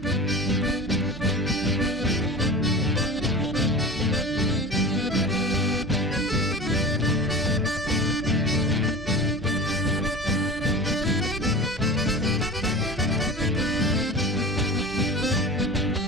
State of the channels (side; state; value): both; normal; correlation 0.33